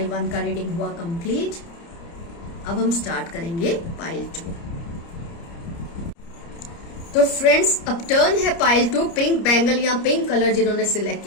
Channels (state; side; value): late; right; 30 ms